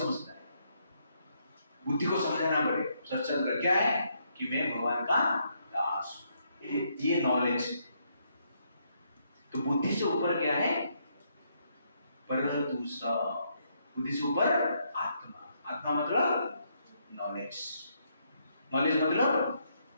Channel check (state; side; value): inverted; both; correlation -0.75